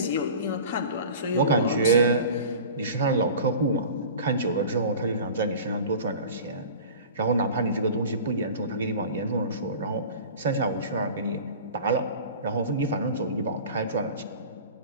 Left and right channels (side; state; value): both; inverted; correlation -0.39